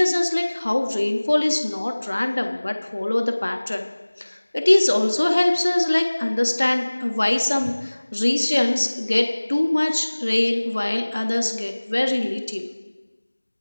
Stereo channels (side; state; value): both; inverted; correlation -1.00